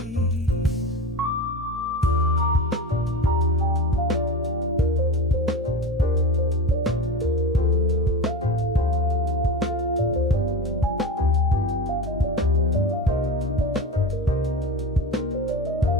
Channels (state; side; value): normal; both; correlation 0.27